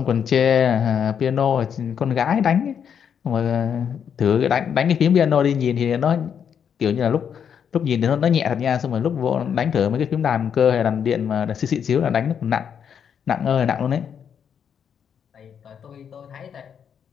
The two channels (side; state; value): right; quieter; 7.8 dB